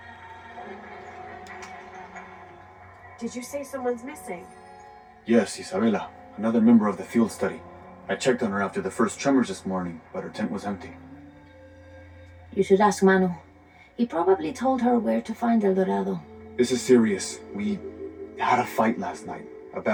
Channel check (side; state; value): both; identical; correlation 1.00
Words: Did you say someone's missing? Yes, Isabela, another member of the field study. I checked on her after the first tremors this morning, but her tent was empty. You should ask Manu. He probably told her where to find El Dorado. This is serious. We had a fight last night. A